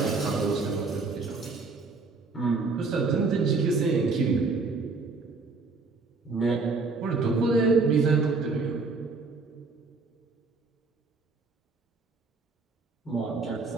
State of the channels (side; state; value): left; quieter; 4.0 dB